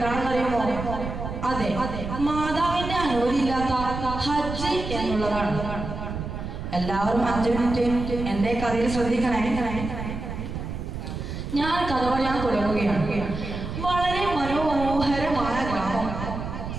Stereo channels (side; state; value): right; noise; rumble, 6 dB below the sound